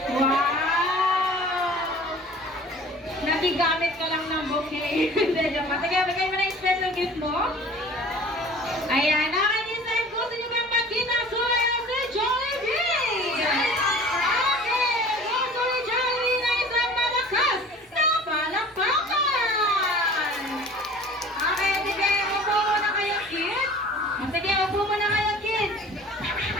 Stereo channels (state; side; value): normal; both; correlation 0.45